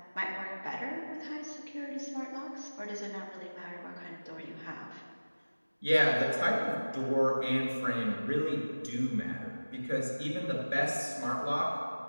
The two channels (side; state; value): both; inverted; correlation -1.00